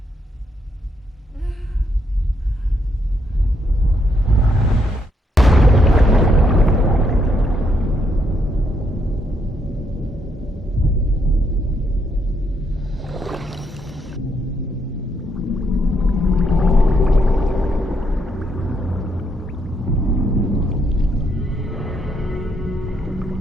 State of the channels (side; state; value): both; normal; correlation 0.75